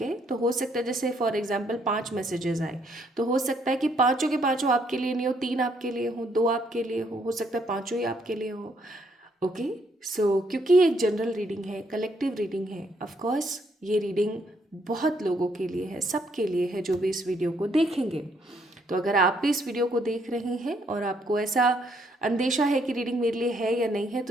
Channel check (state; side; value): normal; both; correlation 0.71